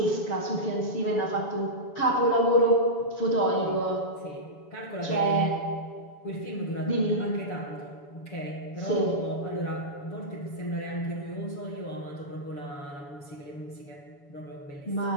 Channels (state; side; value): late; right; 7.1 ms